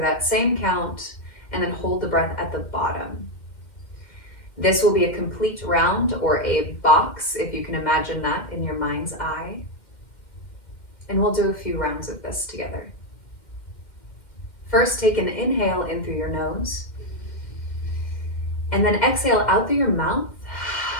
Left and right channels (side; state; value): right; late; 2.1 ms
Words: that same count, and then hold the breath at the bottom. This will be a complete round, or a box, if you can imagine that in your mind's eye. And we'll do a few rounds of this together. First, take an inhale in through your nose, and then exhale out through your mouth.